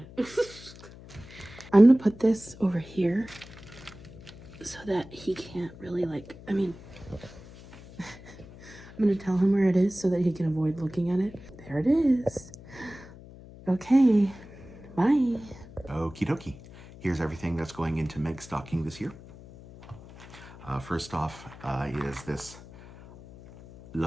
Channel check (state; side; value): noise; left; hum, 18 dB below the sound